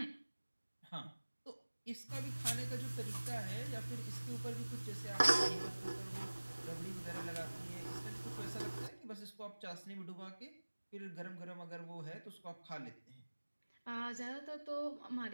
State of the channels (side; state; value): both; inverted; correlation -1.00